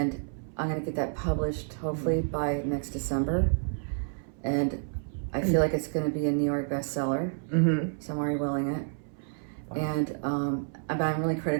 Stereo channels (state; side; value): silent; left; 58 dB below the other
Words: I'm going to get that published hopefully by next December. And I feel like it's going to be a New York bestseller. So I'm already willing it. Wow. And but I'm really